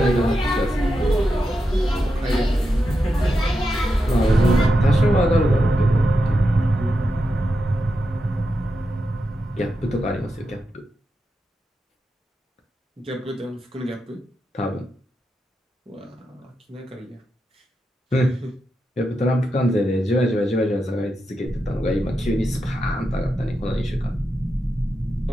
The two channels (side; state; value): both; normal; correlation 0.87